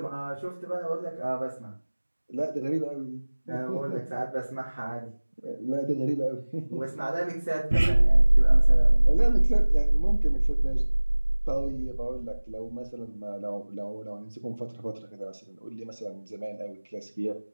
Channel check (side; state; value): both; inverted; correlation -1.00